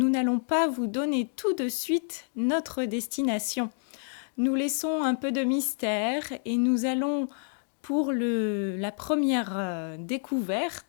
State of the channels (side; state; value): right; silent; 59 dB below the other